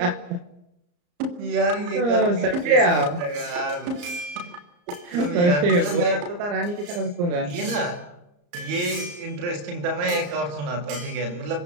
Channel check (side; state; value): left; late; 34 ms